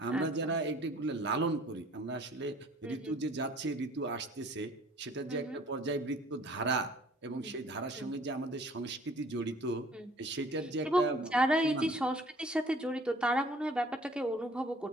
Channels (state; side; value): normal; both; correlation 0.53